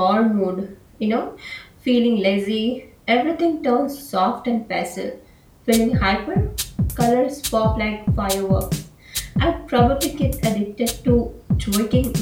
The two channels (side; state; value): both; identical; correlation 1.00